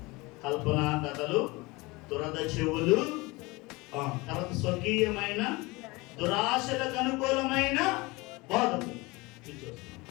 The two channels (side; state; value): right; quieter; 23.8 dB